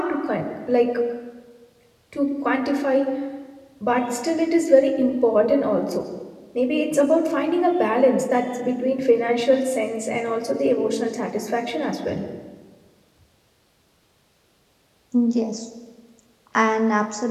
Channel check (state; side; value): identical; both; correlation 1.00